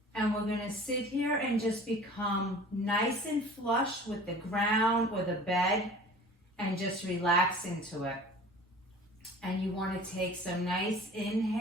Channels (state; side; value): normal; both; correlation 0.44